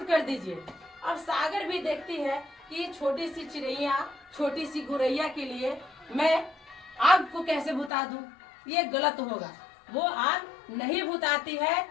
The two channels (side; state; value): right; drops out; at 7.9 s